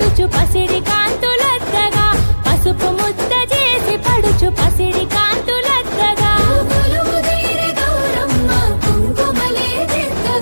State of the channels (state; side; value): inverted; both; correlation -1.00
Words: పసిడి కాంతులద్దగా పసుపు ముద్ద చేసి పడుచు పసిడి కాంతులద్దగా